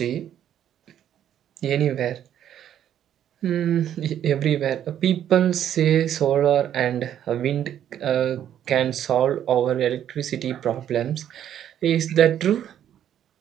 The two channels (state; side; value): quieter; left; 10.3 dB